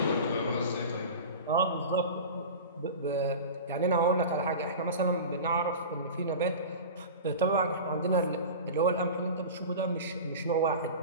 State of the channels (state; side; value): inverted; both; correlation -0.32